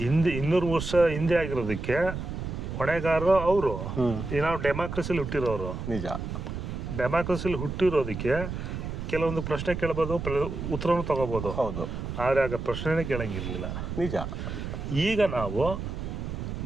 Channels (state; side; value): noise; right; rumble, 6 dB below the sound